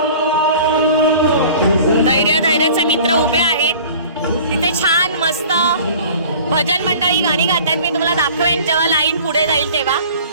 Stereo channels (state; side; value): inverted; both; correlation -0.45